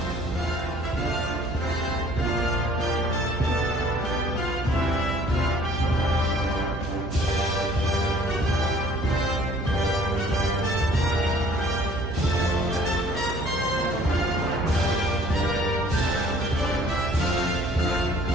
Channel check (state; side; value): noise; right; hum, 8 dB below the sound